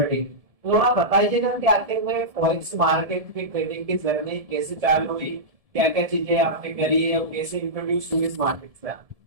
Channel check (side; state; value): left; late; 1.7 ms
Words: थोड़ा बताइएगा कि आखिर में फॉरेक्स मार्केट की ट्रेडिंग की जर्नी कैसे चालू हुई, क्या क्या चीजें आपने करी है और कैसे इंट्रोड्यूस हुई इस मार्केट से आप?